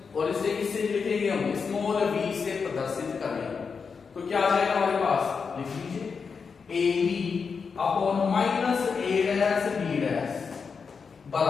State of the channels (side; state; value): right; quieter; 5.5 dB